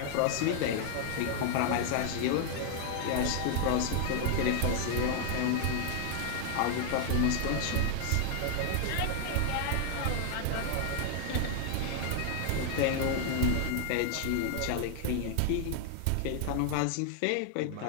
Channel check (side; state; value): both; different; correlation 0.00